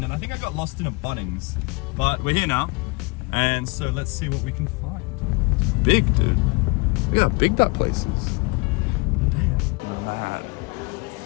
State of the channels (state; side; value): quieter; right; 27.7 dB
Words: and I think I got lost in a Bunnings, but we're here now, and so let's see what we can find. It's big, dude. Look how big that place is.